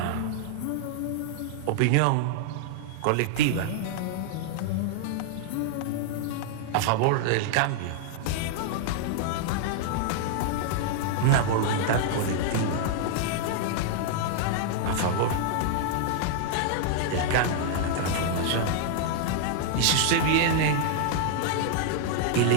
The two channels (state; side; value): different; both; correlation -0.01